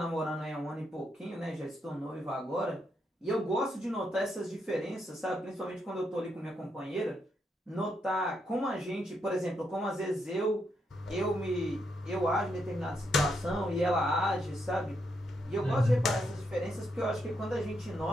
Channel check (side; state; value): both; normal; correlation 0.80